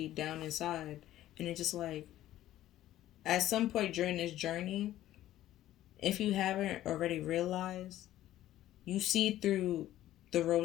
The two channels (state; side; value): quieter; right; 13.7 dB